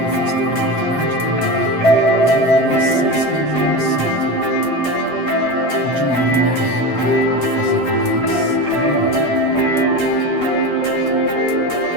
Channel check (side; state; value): right; late; 7.7 ms